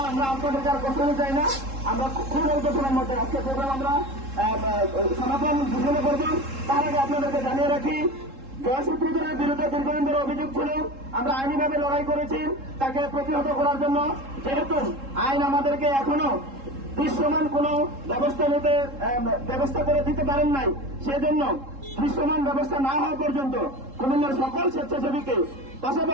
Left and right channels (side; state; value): left; late; 3.7 ms